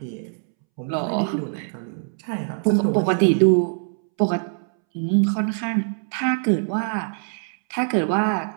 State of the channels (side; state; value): left; silent; 63 dB below the other